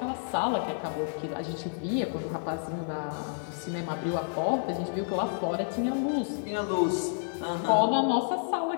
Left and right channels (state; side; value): silent; right; digital silence